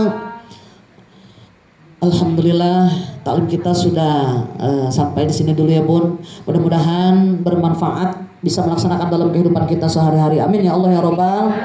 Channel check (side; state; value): both; identical; correlation 1.00